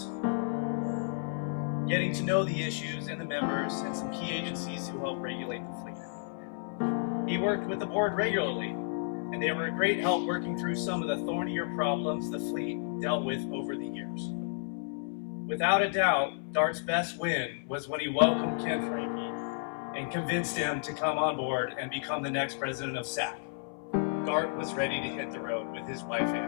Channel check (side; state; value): right; silent; 56 dB below the other